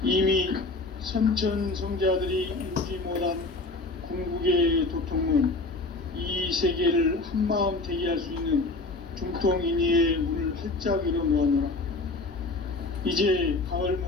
이미 선천성자들이 이루지 못한 궁극의 도통은 이 세계를 한마음 되게 할 수 있는 중통인의의 문을 활짝 열어놓았노라. 이제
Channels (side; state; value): right; quieter; 3.3 dB